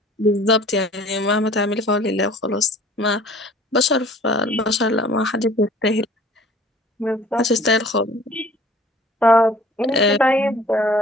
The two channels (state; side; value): normal; both; correlation 0.50